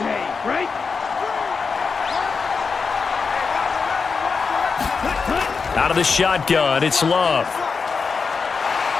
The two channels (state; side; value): quieter; right; 5.1 dB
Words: right? Out of the shotgun, it's Love.